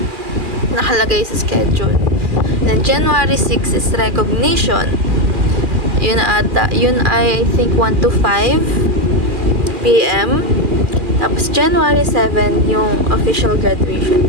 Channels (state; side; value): late; left; 2.4 ms